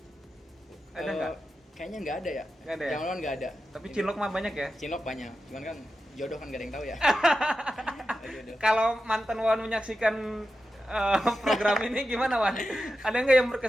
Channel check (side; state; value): both; normal; correlation 0.91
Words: Ada nggak? Kayaknya nggak ada ya. Nggak ada ya? Zaman nggak ada. Tapi cinlok mah banyak ya. Cinlok banyak. Cuman kan jodoh kan gak ada yang tahu ya. Jodoh. Kalau mantan Wan menyaksikan program ini gimana, Wan? Ada nggak yang